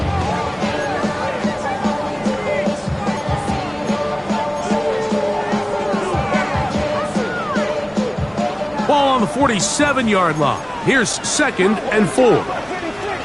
Ball on the 47-yard line. Here's 2nd and 4.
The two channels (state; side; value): noise; left; hum, 29 dB below the sound